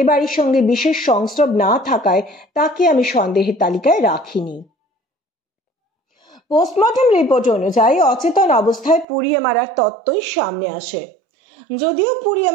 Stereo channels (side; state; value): left; drops out; at 9.1 s